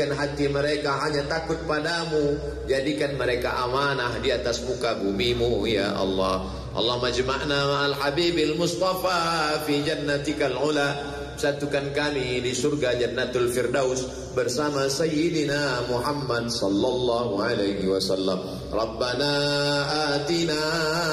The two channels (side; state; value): both; identical; correlation 1.00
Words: hati mereka hanya takut padamu, jadikan mereka amanah di atas muka bumimu ya Allah. Allahumma jama'na ma'al habibil mustafa fi jannatikal ula. Satukan kami di surga Jannatul Firdaus bersama Sayyidina Muhammad sallallahu alaihi wasallam. Rabbana atina